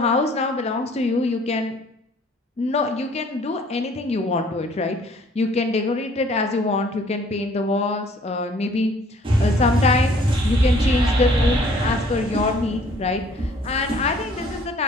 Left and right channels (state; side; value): normal; both; correlation 0.57